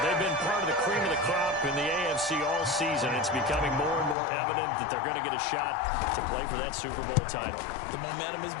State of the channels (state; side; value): drops out; right; at 4.2 s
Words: they've been part of the cream of the crop in the AFC all season. It's becoming more and more evident that they're going to get a shot to play for that Super Bowl title. The momentum has